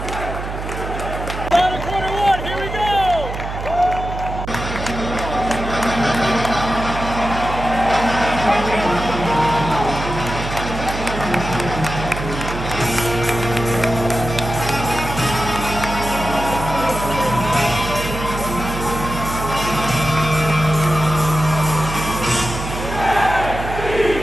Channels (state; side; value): noise; right; hum, 7 dB below the sound